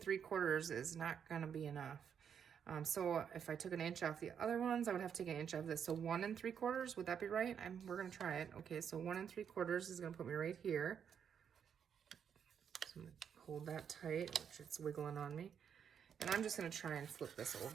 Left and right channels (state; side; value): quieter; left; 7.8 dB